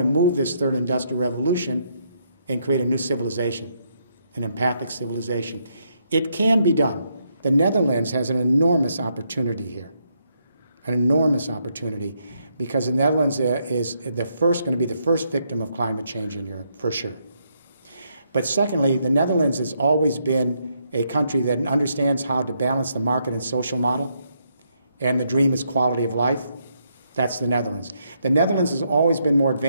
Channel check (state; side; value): inverted; both; correlation -0.76